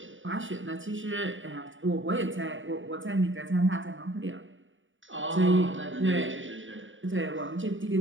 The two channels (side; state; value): left; late; 0.56 ms